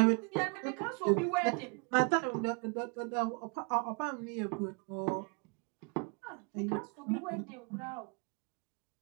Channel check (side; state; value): left; quieter; 33.6 dB